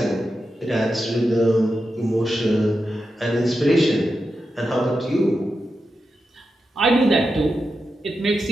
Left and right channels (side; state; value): both; normal; correlation 0.89